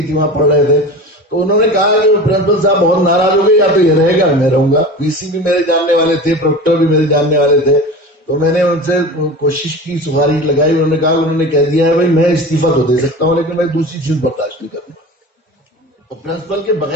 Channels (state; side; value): normal; both; correlation 0.32